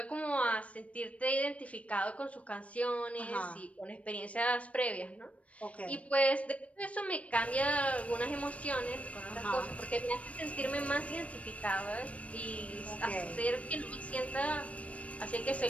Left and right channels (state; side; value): late; right; 0.064 ms